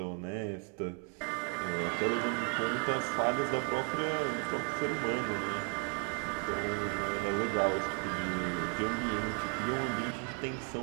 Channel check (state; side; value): quieter; left; 38.3 dB